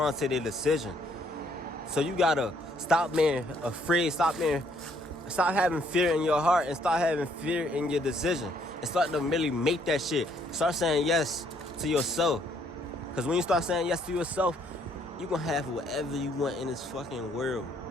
to their decision. So you gotta stop being afraid, stop having fear in your heart, and start having fear in your decision, and start to really make that shit. Start saying yes to yourself. Because when you start saying yes to yourself, you're gonna have whatever you want in this fucking world.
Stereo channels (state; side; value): normal; both; correlation 0.67